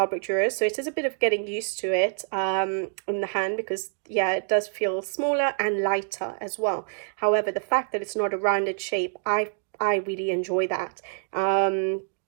Dürer, so it is a bit of getting used to it in the hand, because yeah, it does feel smaller and lighter as well. However, the fact that it's not a rounded shape, I I really enjoy that.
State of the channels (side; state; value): left; silent; digital silence